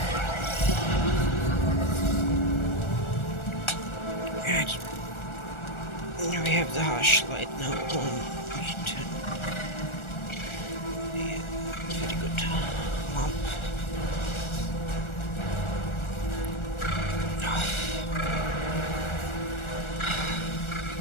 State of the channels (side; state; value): right; late; 1.4 ms